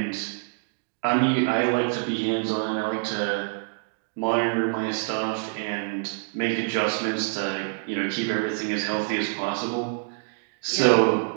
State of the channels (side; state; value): left; silent; 61 dB below the other